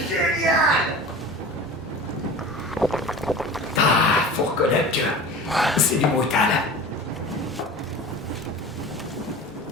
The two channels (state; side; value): normal; both; correlation 0.37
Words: Ah, faut reconnaître que c'est du brutal.